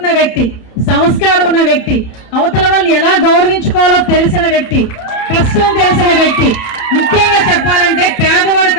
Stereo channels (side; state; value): right; late; 31 ms